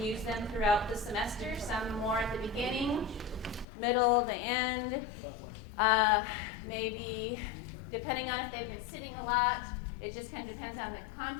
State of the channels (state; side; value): drops out; right; at 3.7 s